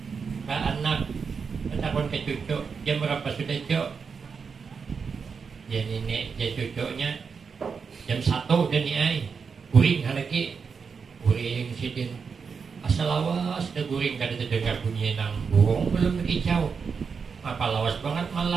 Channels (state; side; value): quieter; left; 5.7 dB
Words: ke anak, bertakut ke cucu. Jam berapa sudah cuk? Ya nenek, ya cucunya jam 1 dan niai guring lagi, guring sidin asal lawas dah guring, kada terdengar bunyi nang burung belum berkicau. Apa lawas banget